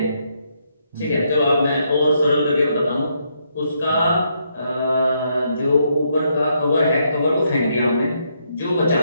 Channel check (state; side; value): inverted; both; correlation -0.76